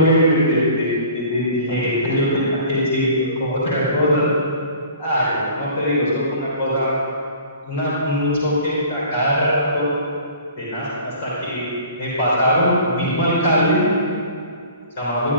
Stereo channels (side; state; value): both; inverted; correlation -0.46